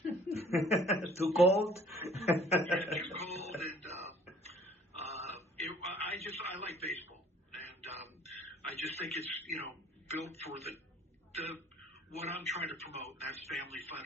Too cold? Yeah, too cold, and I like baseball, and I just think it's built for the what I'm trying to promote, and that's family fun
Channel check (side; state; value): both; normal; correlation 0.54